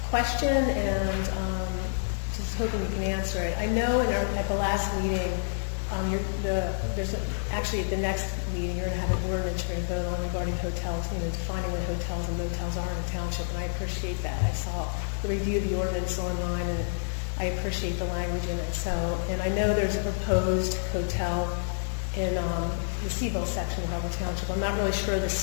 question, and just hoping you can answer it. I know at the last meeting, actually at the next meeting, you're going to have an ordinance you're going to vote on regarding hotels, defining what hotels and motels are in the township, and I appreciate that. I saw the review of the ordinance online, and I appreciate the language in it. So, and I know there's a proposed hotel in the Seville section of Upper Township. I'm not really sure the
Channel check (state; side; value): silent; right; 59 dB below the other